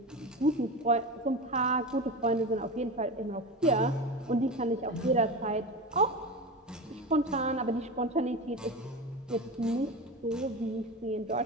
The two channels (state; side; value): normal; both; correlation 0.25